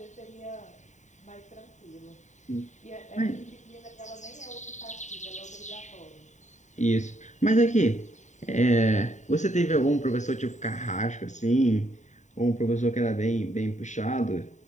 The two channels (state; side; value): late; right; 0.34 ms